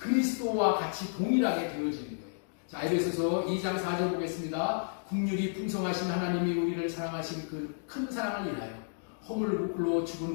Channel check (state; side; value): silent; right; digital silence